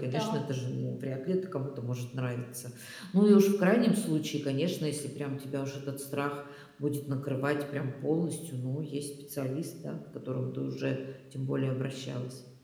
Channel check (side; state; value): both; identical; correlation 1.00